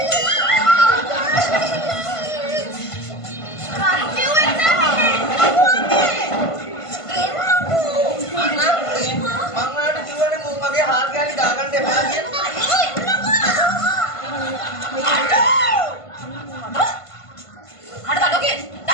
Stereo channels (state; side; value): late; right; 1.5 ms